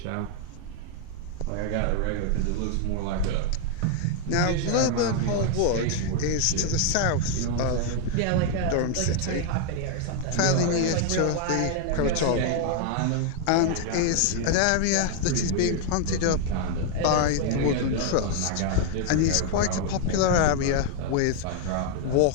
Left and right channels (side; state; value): both; different; correlation 0.00